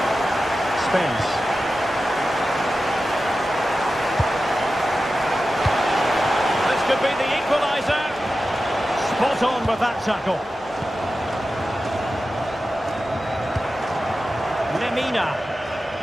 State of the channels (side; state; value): both; normal; correlation 0.93